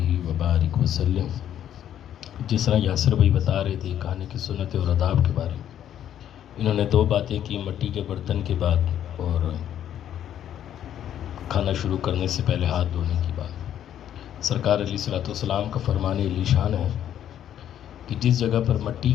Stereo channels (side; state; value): right; quieter; 10.5 dB